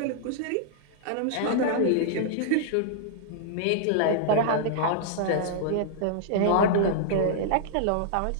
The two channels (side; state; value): both; different; correlation -0.01